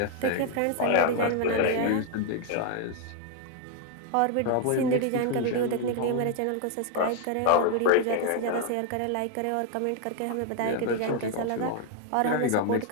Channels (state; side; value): different; both; correlation 0.00